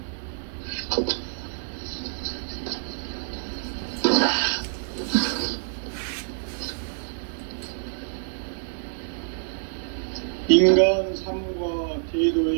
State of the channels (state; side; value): silent; left; 56 dB below the other